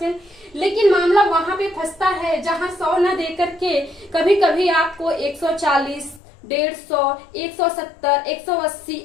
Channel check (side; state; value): right; drops out; at 6.2 s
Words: लेकिन मामला वहां पे फंसता है जहां 100 न दे करके कभी कभी आपको 140, 150, 170, 180,